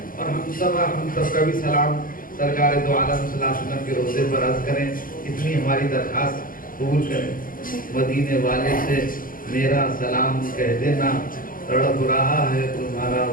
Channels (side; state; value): right; late; 0.40 ms